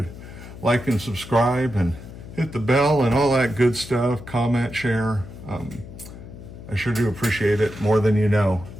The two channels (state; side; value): noise; left; hum, 14 dB below the sound